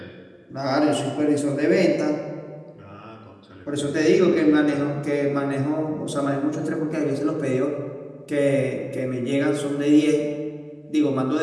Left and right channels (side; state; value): both; identical; correlation 1.00